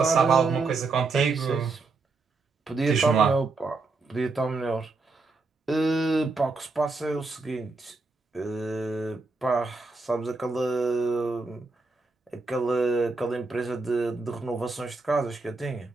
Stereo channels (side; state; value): left; quieter; 3.8 dB